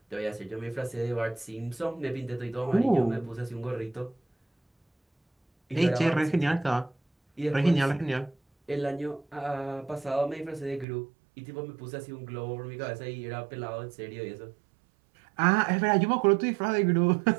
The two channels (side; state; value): left; drops out; at 10.9 s